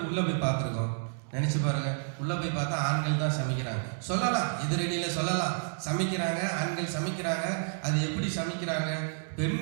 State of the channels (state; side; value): silent; left; digital silence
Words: உள்ளே போய் பார்த்துருக்கோம்? நினச்சி பாருங்கள். உள்ளே போய் பார்த்தா ஆண்கள் தான் சமைக்கிறாங்க. சொல்லலாம், எதிரணியில் சொல்லலாம், சமைக்கிறாங்க, ஆண்கள் சமைக்கிறாங்க. அது எப்படி சமைக்கிறாங்க?